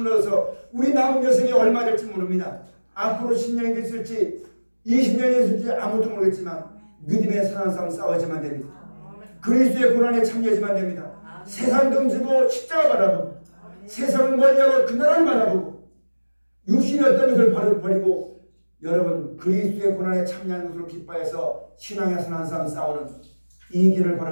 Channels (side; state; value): both; inverted; correlation -1.00